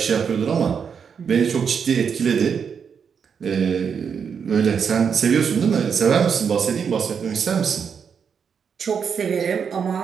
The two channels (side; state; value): left; quieter; 6.7 dB